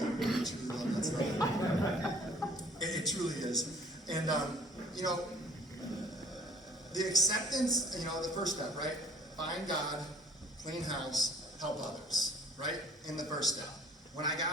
really truly love that stuff. It truly is. And, you know, the acceptance, you know, the first step, right? Find God, clean house, help others, right? In the first step. When I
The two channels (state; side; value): normal; both; correlation 0.53